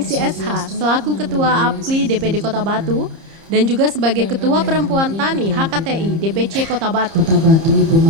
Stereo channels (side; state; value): left; late; 30 ms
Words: SH selaku Ketua APKLI DPD Kota Batu dan juga sebagai Ketua Perempuan Tani HKTI DPC Kota Batu. Kota Batu, Ibu